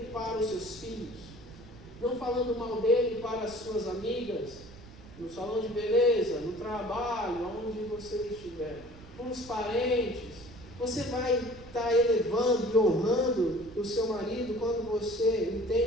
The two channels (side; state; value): right; noise; rumble, 19 dB below the sound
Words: para os seus filhos, não falando mal dele para as suas amigas, no salão de beleza, no trabalho, onde você estiver, com os parentes. Você vai estar elevando e honrando o seu marido quando você